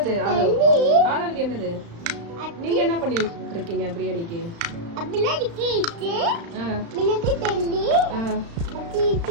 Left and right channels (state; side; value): late; left; 35 ms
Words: ஆனந்த் என்னது? நீங்க என்ன பண்ணிட்டு இருக்கீங்க பிரியாணிக்கு? அப்படியே கீச்சு மினக்கு தெல்லி